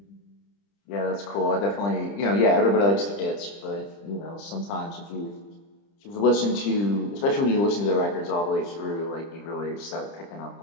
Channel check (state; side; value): late; right; 30 ms